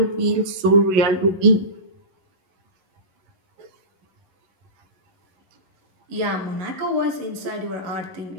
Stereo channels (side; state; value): left; late; 11 ms